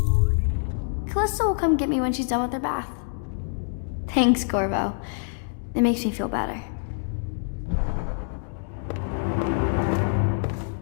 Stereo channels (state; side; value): silent; right; digital silence